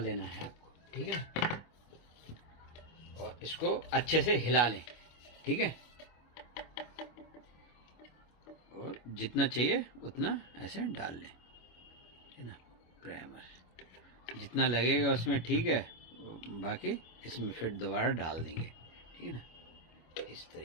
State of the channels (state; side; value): late; right; 25 ms